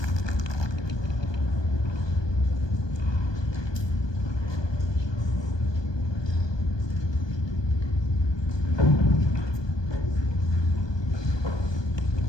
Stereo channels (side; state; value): right; late; 1.2 ms